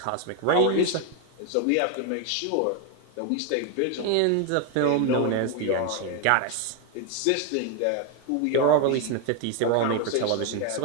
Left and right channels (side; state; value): both; different; correlation 0.01